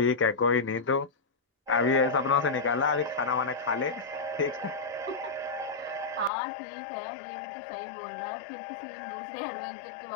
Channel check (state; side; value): drops out; right; at 6.3 s